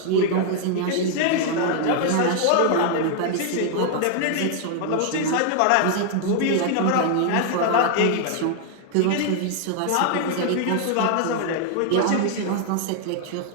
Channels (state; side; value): different; both; correlation 0.00